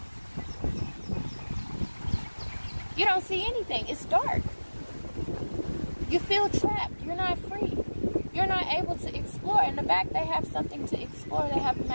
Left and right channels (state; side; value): inverted; both; correlation -1.00